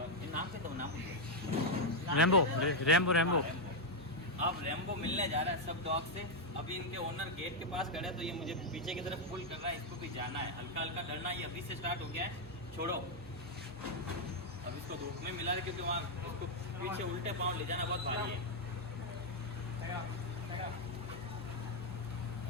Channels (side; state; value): both; normal; correlation 0.00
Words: ये नाम से तो नाम रैम्बो अब रेम्बो मिलने जा रहा है सब डॉग से। अभी इनके ओनर गेट के पास खड़े हैं तो ये मुझे पीछे की तरफ पुल कर रहा है, इसको भी जाना है, हल्का हल्का डरना ये अभी से स्टार्ट हो गया है। छोड़ो अब इसको धूप में मिला है क्योंकि वहाँ उसको पीछे उल्टे पाँव ले जाना बहुत भारी है।